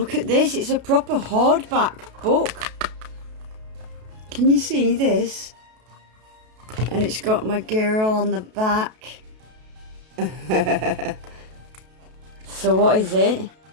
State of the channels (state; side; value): late; left; 32 ms